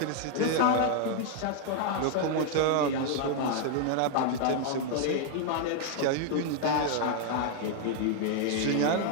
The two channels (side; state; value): both; different; correlation 0.00